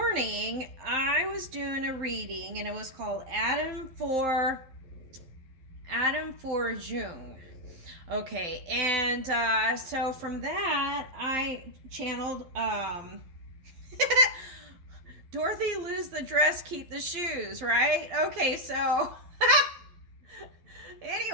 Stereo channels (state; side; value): late; left; 12 ms